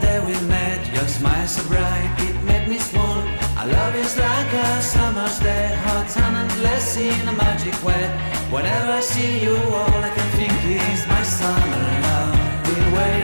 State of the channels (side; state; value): both; inverted; correlation -1.00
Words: day we met. Your smile so bright, it made me swoon. Our love is like a summer's day, hot and endless in a magic way. Whenever I see you, all I can think is my summer love. Been